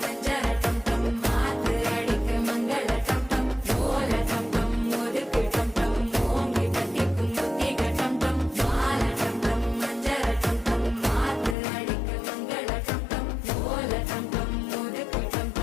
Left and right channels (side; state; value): right; drops out; at 11.6 s